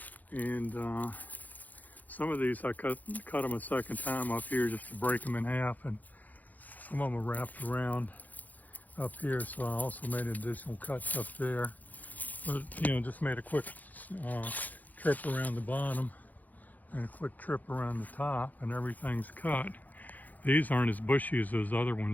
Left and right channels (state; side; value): late; right; 0.081 ms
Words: And some of these I cut them a second time up here just to break them in half, and some of them are wrapped around up here, so I also made additional cuts up there. But you know, just made a quick trip around the bottom and a quick trip around the top, and everything's cut. These aren't as bushy as those other